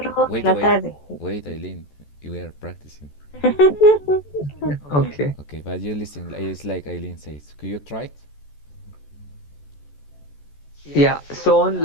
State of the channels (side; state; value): right; late; 14 ms